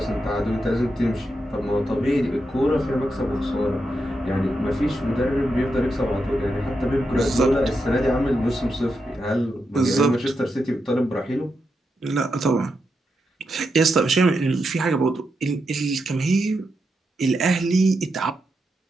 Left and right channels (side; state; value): both; normal; correlation 0.85